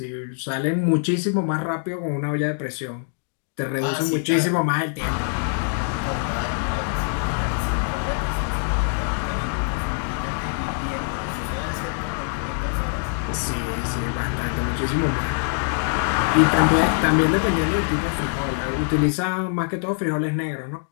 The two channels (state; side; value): silent; right; 62 dB below the other